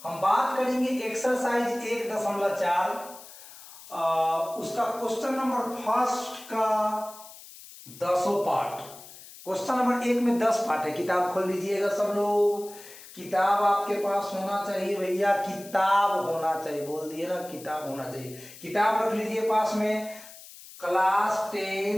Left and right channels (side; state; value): left; noise; hiss, 18 dB below the sound